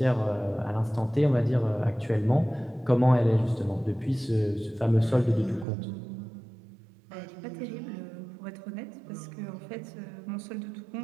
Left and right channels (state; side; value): drops out; left; at 5.7 s